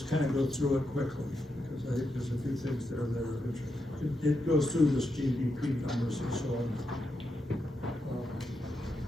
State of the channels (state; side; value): normal; both; correlation 0.85